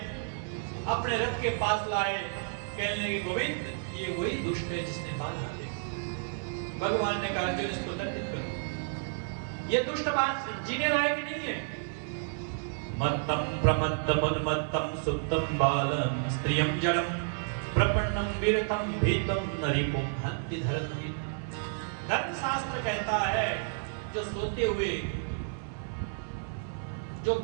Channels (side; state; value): left; silent; 57 dB below the other